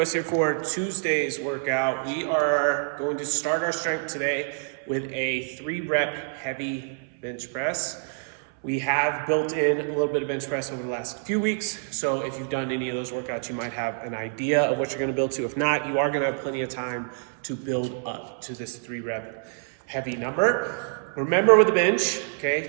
here for Tuesday's workout. We are going to start our strength today with a 3-rep heavy bench press. We have built in a little bit of bench press over the last few weeks, so if you've done any of those workouts, you might have an idea of what you're going to build to. If not, you are going to have plenty of time to build up to this 3-rep heavy number. Remember with the bench,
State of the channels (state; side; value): silent; left; 59 dB below the other